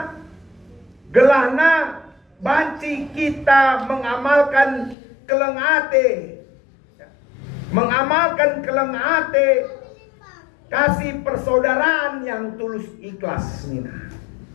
gelahna banci kita mengamalkan kelengate. Mengamalkan kelengate kasih persaudaraan yang tulus ikhlas nina.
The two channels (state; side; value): drops out; right; at 5.0 s